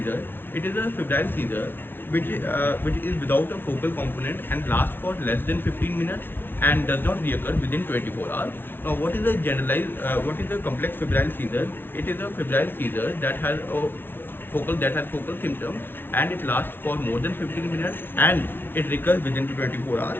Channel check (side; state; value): right; late; 0.10 ms